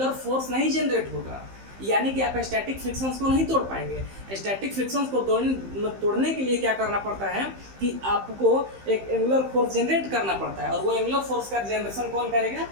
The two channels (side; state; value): left; late; 15 ms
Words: फोर्स नहीं जनरेट होगा, यानी कि आप स्टैटिक फ्रिक्शंस को नहीं तोड़ पाएंगे। स्टैटिक फ्रिक्शंस को तोड़ने के लिए क्या करना पड़ता है कि आपको एक एंगुलर फोर्स जनरेट करना पड़ता है, और वो एंगुलर फोर्स का जनरेशन कौन करेगा,